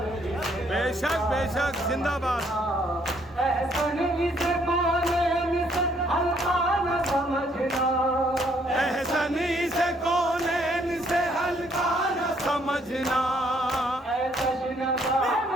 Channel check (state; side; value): normal; both; correlation 0.67